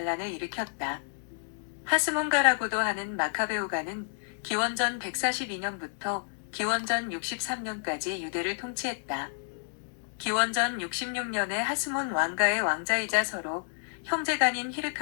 일으켰다. 하스몬가라고도 하는 마카베오가는 기원전 142년부터 기원전 63년까지 유대를 통치했다. 기원전 66년에 하스몬 왕가의 왕자이자 서로 형제간인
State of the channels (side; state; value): right; silent; digital silence